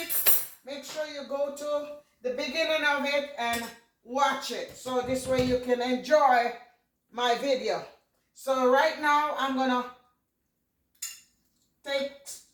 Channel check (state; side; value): identical; both; correlation 1.00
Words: it, make sure you go to the beginning of it and watch it. So this way you can enjoy my video. So right now I'm gonna take